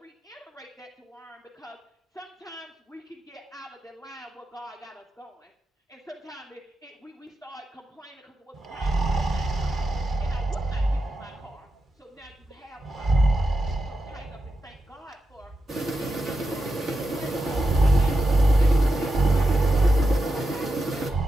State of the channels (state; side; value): normal; both; correlation 0.88